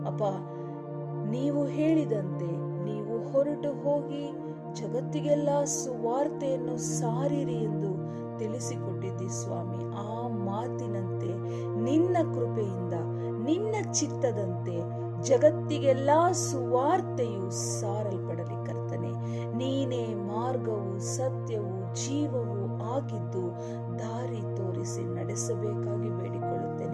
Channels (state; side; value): identical; both; correlation 1.00